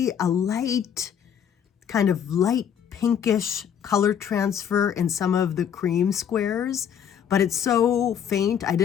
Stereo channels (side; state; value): right; quieter; 8.5 dB